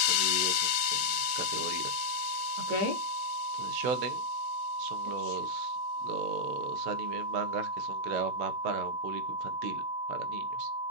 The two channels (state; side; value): late; left; 15 ms